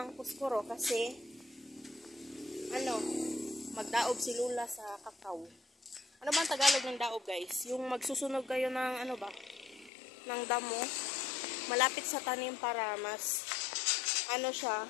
puskuro kasi magdaob si Lola sa kakao. Ano ba ang Tagalog ng daob guys? Yung magsusunog kayo ng ng damo malapit sa tanim para mas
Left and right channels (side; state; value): right; drops out; at 9.9 s